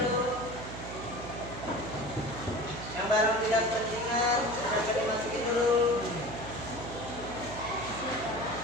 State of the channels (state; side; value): noise; right; hum, 10 dB below the sound